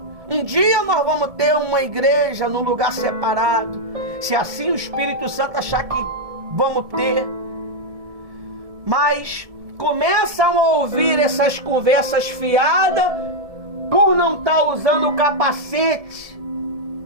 Um dia nós vamos ter uma igreja num lugar separado, se assim o Espírito Santo achar que vamos ter. Mas começam a ouvir essas conversas fiadas por não estar usando o capacete.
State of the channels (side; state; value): left; late; 1.7 ms